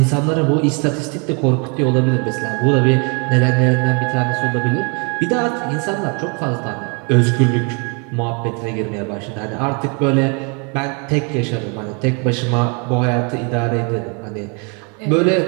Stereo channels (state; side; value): quieter; left; 34.7 dB